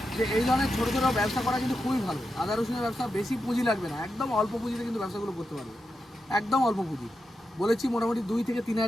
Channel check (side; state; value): both; normal; correlation 0.88